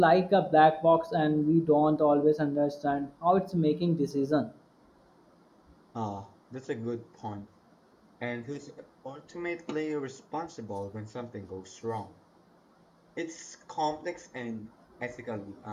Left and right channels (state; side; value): identical; both; correlation 1.00